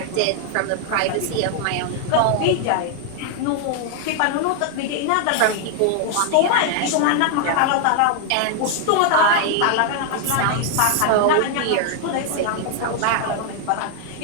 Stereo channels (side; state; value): both; different; correlation 0.00